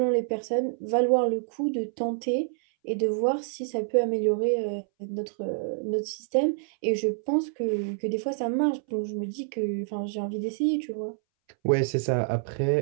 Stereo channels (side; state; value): left; silent; 60 dB below the other